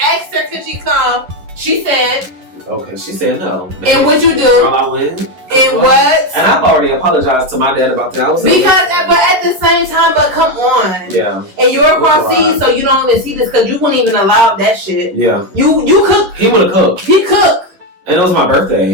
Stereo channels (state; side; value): late; left; 11 ms